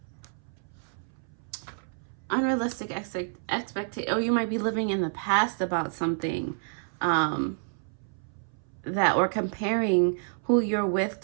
Unrealistic expectation. Oh, you might be living in the past about something, that, or comparing who you're with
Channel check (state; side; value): silent; left; 59 dB below the other